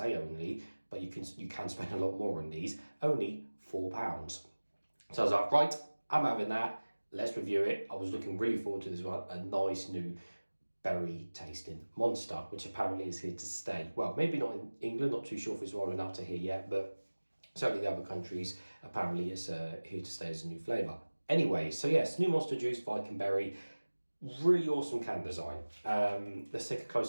only, but you can spend a lot more on these, only £4. So I was like, right, I'm having that. Let's review it. I was looking really forward to this one. A nice new berry tasting monster, which apparently is here to stay. Well, maybe not in England, not too sure if it's rolling up to here yet, but certainly the other countries, apparently it's here to stay as a new flavour. Anyway, so yes, new Monster Juice Viking Berry. Really awesome can design. Let's take a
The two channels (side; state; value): both; inverted; correlation -1.00